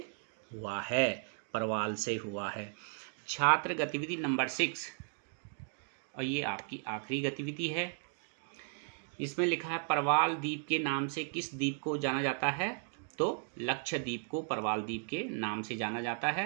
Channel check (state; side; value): silent; left; 54 dB below the other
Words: हुआ है, परवाल से हुआ है। छात्र गतिविधि नंबर 6, और ये आपकी आखिरी गतिविधि है। इसमें लिखा है परवाल द्वीप के नाम से किस द्वीप को जाना जाता है? तो लक्षद्वीप को परवाल द्वीप के नाम से जाना जाता है।